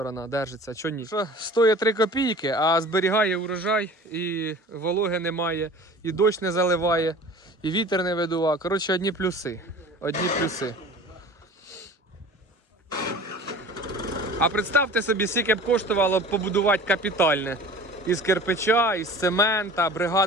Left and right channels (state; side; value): normal; both; correlation 0.42